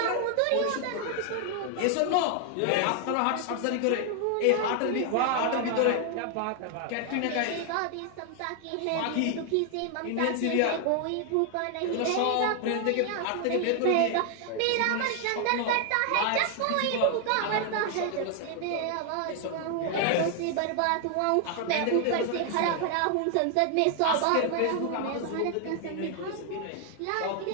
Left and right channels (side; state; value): both; different; correlation 0.00